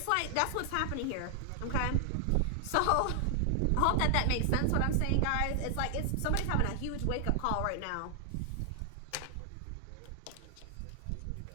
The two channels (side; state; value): both; different; correlation 0.00